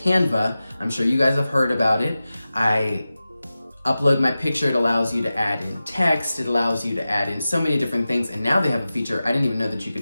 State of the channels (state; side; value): inverted; both; correlation -0.94